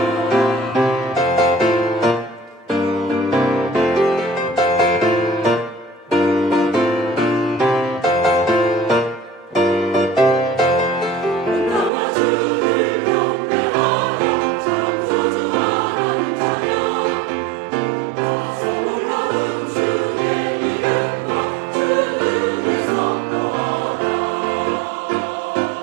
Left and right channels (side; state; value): left; drops out; at 11.9 s